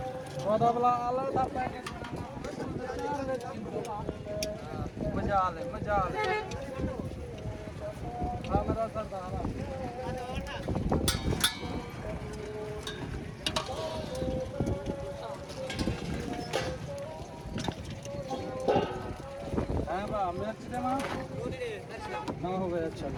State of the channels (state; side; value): identical; both; correlation 1.00